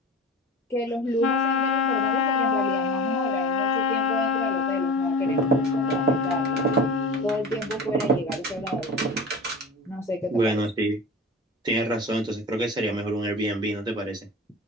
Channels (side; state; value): both; normal; correlation 0.33